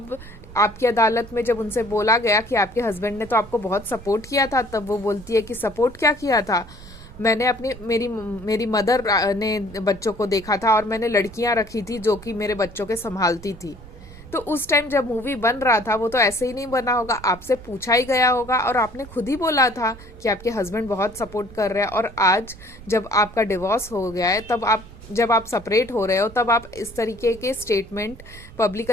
आपकी अदालत में जब उनसे बोला गया कि आपके हस्बैंड ने तो आपको बहुत सपोर्ट किया था, तब वो बोलती है कि सपोर्ट क्या किया था, मैंने मेरी मदर ने बच्चों को देखा था और मैंने लड़कियां रखी थी जो कि मेरे बच्चों के संभालती थी। तो उस टाइम जब मूवी बन रहा था वो तो ऐसे ही नहीं बना होगा, आपसे पूछा ही गया होगा और आपने खुद ही बोला था कि आपके हस्बैंड बहुत सपोर्ट कर रहे हैं। और आज जब आपका डिवोर्स हो गया है, जब आप सेपरेट हो रहे हो, तब आप इस तरीके के स्टेटमेंट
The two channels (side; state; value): right; noise; rumble, 17 dB below the sound